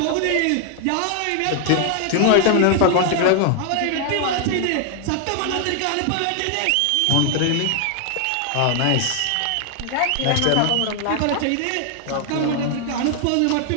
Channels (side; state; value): both; different; correlation 0.00